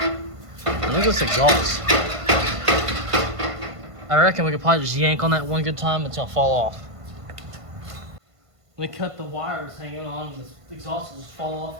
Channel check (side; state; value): left; late; 1.5 ms